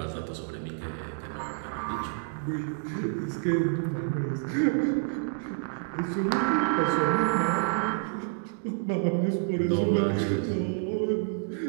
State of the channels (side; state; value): left; silent; digital silence